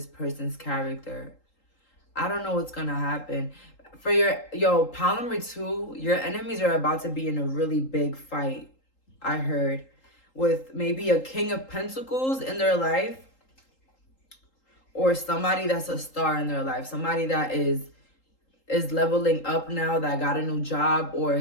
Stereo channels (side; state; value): right; late; 3.8 ms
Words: person's character. I don't know what's going to happen. For pile number 2, your enemies are about to be in a really big fight, I heard. With maybe a King of Pentacles in their life, or somebody that's a star in their life, somebody that is leveling up now, that got a new job or